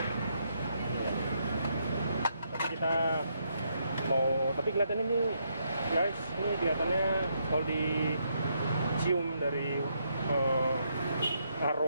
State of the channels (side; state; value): both; inverted; correlation -0.76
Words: Tapi kita tapi kelihatannya ini guys, ini kelihatannya kalau dicium dari